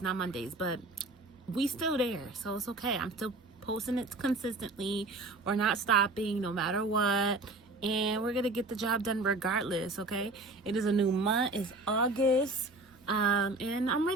not Mondays, but we still there, so it's okay. I'm still posting it consistently. We're not stopping no matter what. And we're going to get the job done regardless, okay? It is a new month. It's August. And I'm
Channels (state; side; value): quieter; left; 3.0 dB